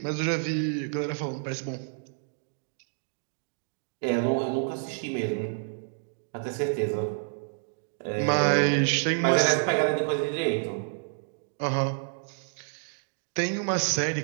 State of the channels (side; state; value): left; silent; digital silence